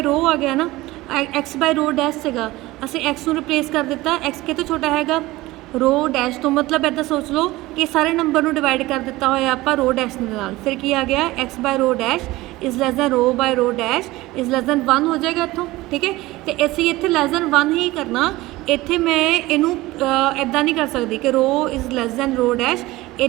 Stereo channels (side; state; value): left; quieter; 19.0 dB